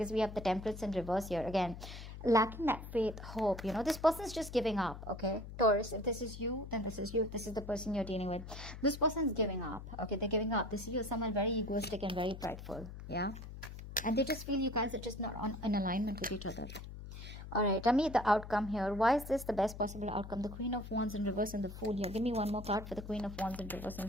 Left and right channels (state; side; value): noise; left; hum, 11 dB below the sound